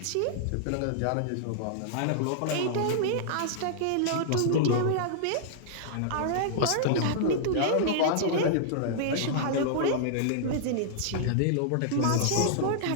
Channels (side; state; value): both; different; correlation -0.01